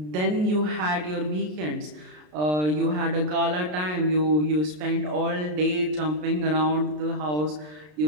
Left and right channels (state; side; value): late; left; 33 ms